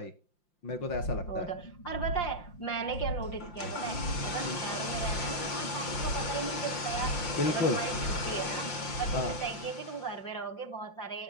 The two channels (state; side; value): late; right; 5.7 ms